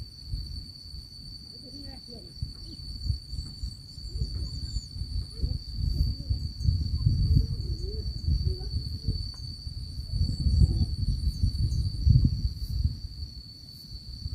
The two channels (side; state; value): both; identical; correlation 1.00